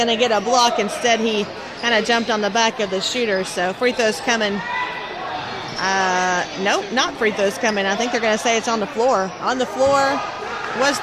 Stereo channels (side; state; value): both; identical; correlation 1.00